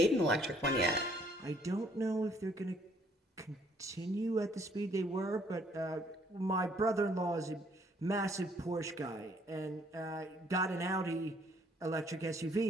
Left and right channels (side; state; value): both; normal; correlation 0.64